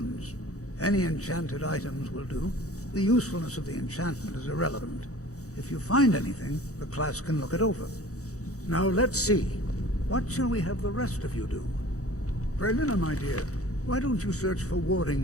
Any enchanted items will do. The usefulness of the enchantment is irrelevant. If you find anything, the class can look it over. Now let's see. What shall we have the rest of you do? Berlina, my dear, why don't you search for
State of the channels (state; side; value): late; right; 0.65 ms